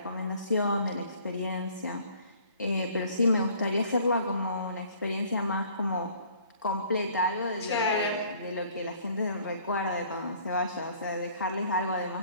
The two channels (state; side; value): inverted; both; correlation -0.56